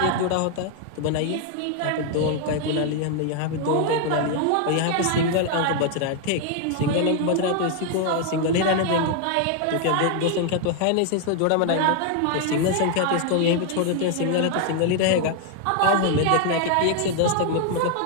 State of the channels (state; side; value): different; both; correlation 0.00